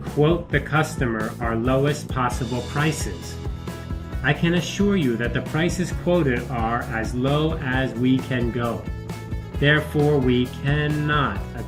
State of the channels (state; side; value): identical; both; correlation 1.00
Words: the customer our lowest possible prices. I can assure you that the prices quoted are as low as we can go. Therefore, we cannot